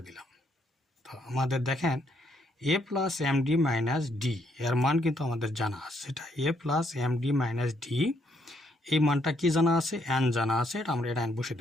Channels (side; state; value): both; normal; correlation 0.72